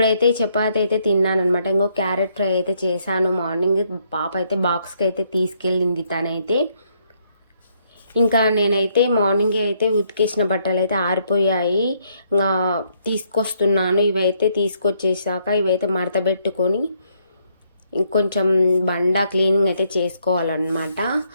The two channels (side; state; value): both; inverted; correlation -0.72